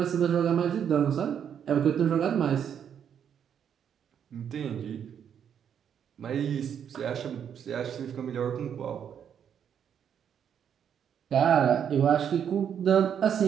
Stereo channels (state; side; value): quieter; left; 8.4 dB